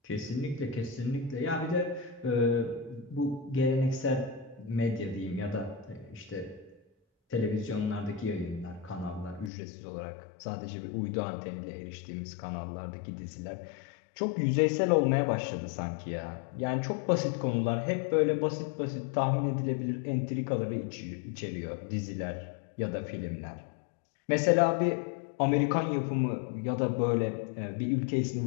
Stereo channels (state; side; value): drops out; right; at 9.5 s